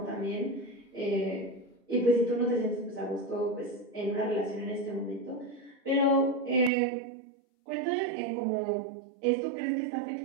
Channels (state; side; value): drops out; left; at 6.7 s